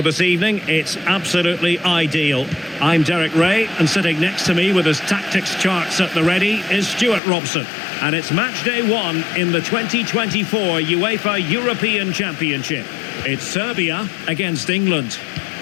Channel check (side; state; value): right; drops out; at 7.2 s